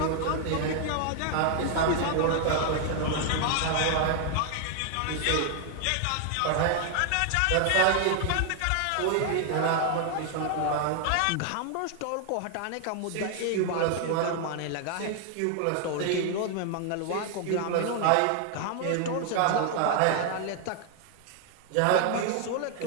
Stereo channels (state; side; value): different; both; correlation 0.00